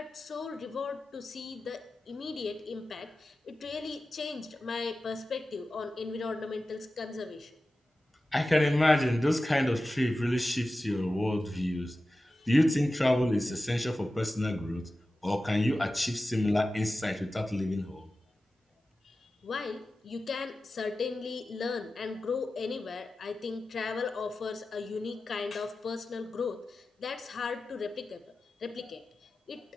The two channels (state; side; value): normal; both; correlation 0.94